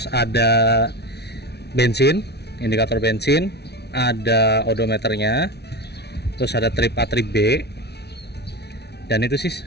ada bensin, indikator bensin, ada odometernya, terus ada trip A, trip B, dan itu sih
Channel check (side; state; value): right; late; 0.49 ms